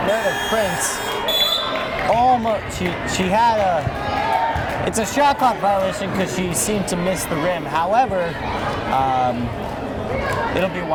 Meredith Prince. Almost, she had a, it's a shot clock violation because she seemed to miss the rim. However, it'll be a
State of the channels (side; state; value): both; identical; correlation 1.00